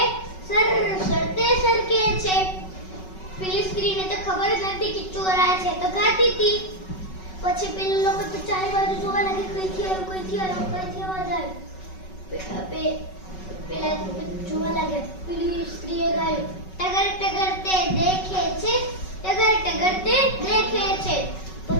સરસતે સરકે છે। પેલી સ્ત્રીને તો ખબર જ નથી કે ચોર આયા છે, તો ગાતી હતી। પછી પેલા લોકો તો ચારે બાજુ જોવા લાગે, કઈથી અવાજ આવે। પેલા જોવા લાગ્યા। પેલી સ્ત્રીએ ગાયું, ટગર ટગર તે દેખે છે, ટગર ટગર તે દેખે છે।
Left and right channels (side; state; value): right; late; 5.3 ms